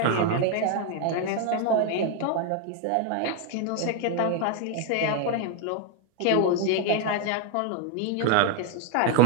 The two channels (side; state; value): both; different; correlation 0.00